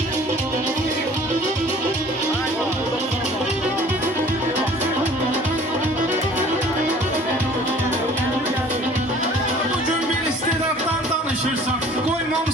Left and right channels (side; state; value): both; normal; correlation 0.50